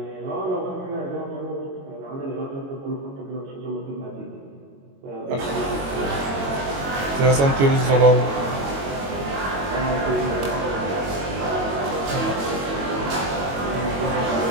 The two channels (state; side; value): late; left; 22 ms